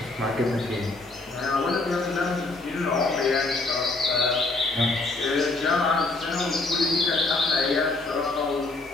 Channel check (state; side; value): quieter; right; 3.2 dB